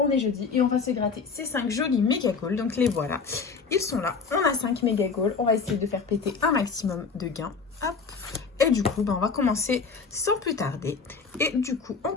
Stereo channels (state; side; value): quieter; right; 5.1 dB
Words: est jeudi et on va se gratter ces 5 jolis méga goals. Donc les voilà, ils sont là. On a 5 méga goals, on va essayer de faire péter un maximum de gains. Hop. Et du coup, on va commencer sans plus tarder. Et du coup, on